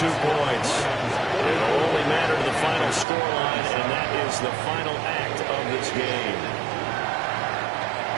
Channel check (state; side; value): drops out; left; at 3.1 s